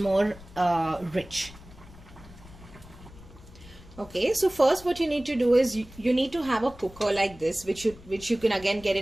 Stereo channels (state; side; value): noise; left; rumble, 20 dB below the sound